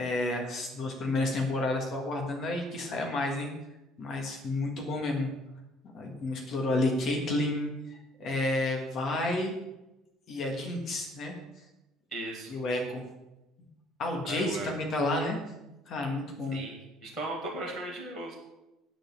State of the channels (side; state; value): both; normal; correlation 0.62